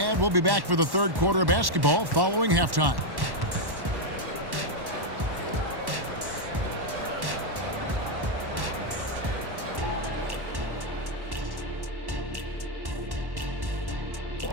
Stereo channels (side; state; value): left; late; 1.1 ms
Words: we'll be back for the third quarter of basketball following halftime.